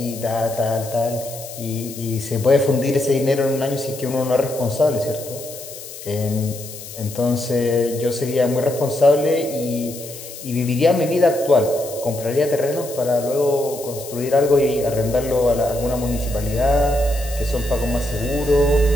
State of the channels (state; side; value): noise; left; hiss, 13 dB below the sound